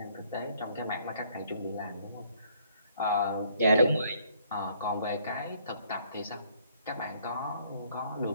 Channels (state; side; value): inverted; both; correlation -0.64